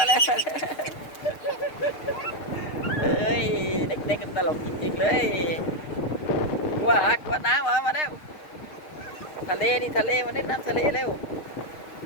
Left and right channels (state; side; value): late; right; 6.5 ms